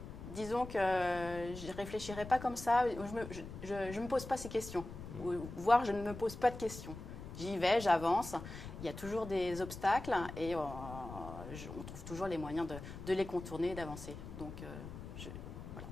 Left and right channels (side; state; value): left; noise; rumble, 11 dB below the sound